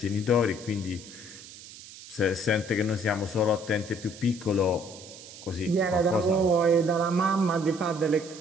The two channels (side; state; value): right; noise; hiss, 17 dB below the sound